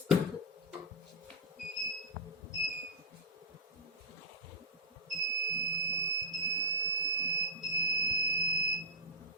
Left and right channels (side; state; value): both; normal; correlation -0.11